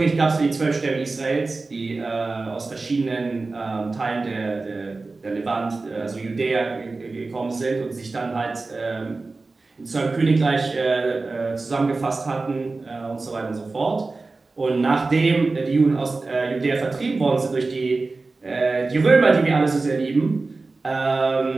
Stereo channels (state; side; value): quieter; left; 3.6 dB